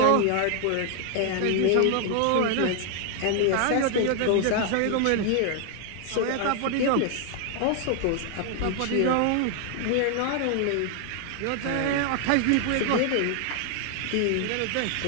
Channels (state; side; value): different; both; correlation 0.00